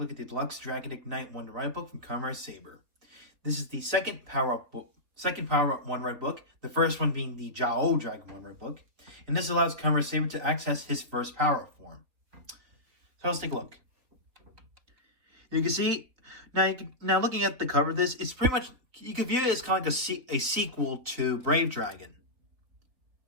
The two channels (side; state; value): left; late; 3.6 ms